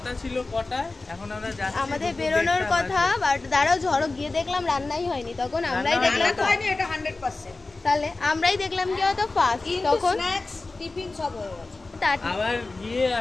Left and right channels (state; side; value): quieter; right; 3.4 dB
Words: ছিল কটায়, এখন আমরা যাচ্ছি। আমাদের বেরোনোর কথা, বাট দাঁড়াও ঝড়ক গিয়ে দেখলাম রান্নাই হয়নি, তখন আমরাই দেখলাম তো হয়নি, এটা 100%। তাহলে আমরাই দেখলাম কি হয়তো ফার্স্ট, তখন স্ন্যাক্স টিফিন সব হয়ে গেছে। আবার গিয়ে